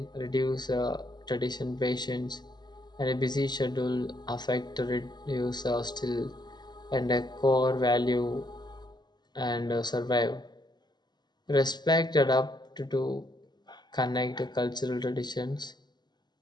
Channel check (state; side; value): late; right; 0.21 ms